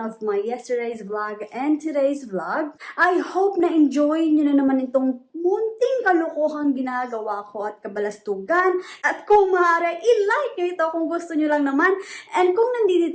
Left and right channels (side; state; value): both; identical; correlation 1.00